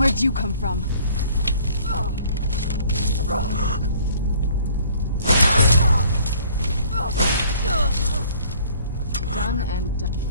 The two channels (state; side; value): inverted; both; correlation -0.56